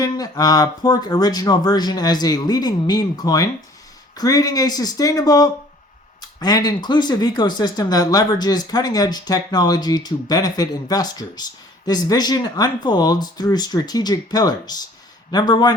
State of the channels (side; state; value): both; normal; correlation 0.53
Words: Pork Original version as a leading meme coin, creating a sustainable and inclusive ecosystem that leverages cutting-edge technology to benefit investors. This vision unfolds through strategic pillars. Number